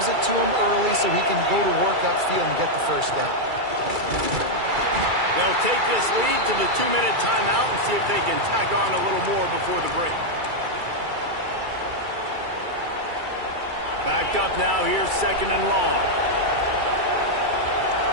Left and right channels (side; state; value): left; late; 2.3 ms